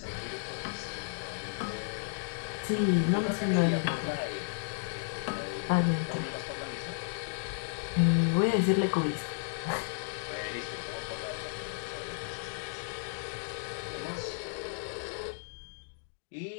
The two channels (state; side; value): silent; right; digital silence